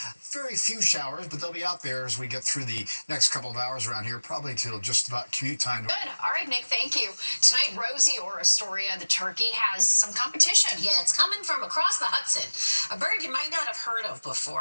Very few showers, but they'll be out there as we get through the next couple of hours around here, probably till just about commute time. Good. All right, Nick, thank you. Tonight, Rosie or Astoria, the turkey, has some competition. Yeah, it's coming from across the Hudson. A bird you might not have heard of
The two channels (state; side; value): inverted; both; correlation -1.00